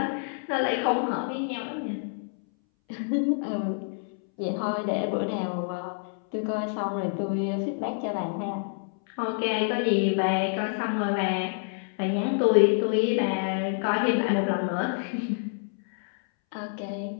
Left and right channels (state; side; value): silent; right; 60 dB below the other